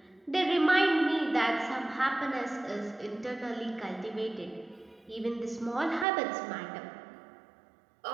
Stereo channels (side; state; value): left; drops out; at 6.1 s